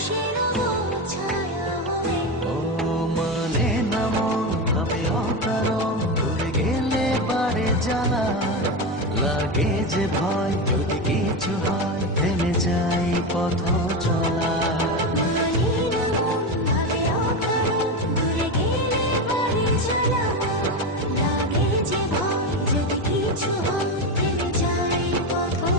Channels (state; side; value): normal; both; correlation 0.16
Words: রবো ছায়া হয়ে। ও মানে না মন ভাবে অকারণ, দূরে গেলে বাড়ে জ্বালা, লাগে যে ভয় যদি কিছু হয় থেমে যাই পথ চলা। মানে না মন ভাবে অকারণ, দূরে গেলে বাড়ে জ্বালা, লাগে যে ভয় যদি কিছু হয় থেমে যাই পথ